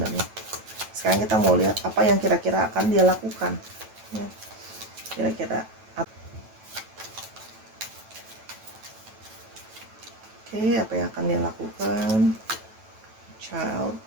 Sekarang kita mau lihat apa yang kira-kira akan dia lakukan ya. Kira-kira Oke, apa yang akan dia lakukan? Child.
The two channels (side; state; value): left; late; 9.1 ms